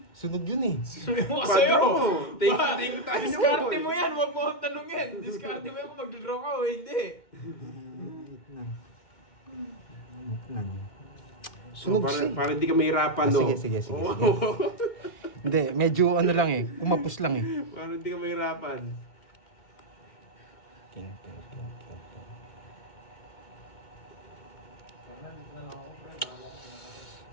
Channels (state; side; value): late; right; 2.2 ms